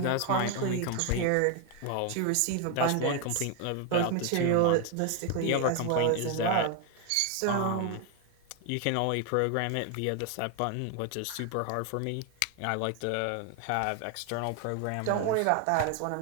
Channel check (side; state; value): both; different; correlation 0.01